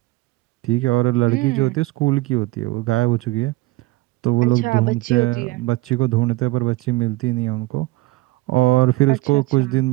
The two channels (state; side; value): quieter; left; 19.9 dB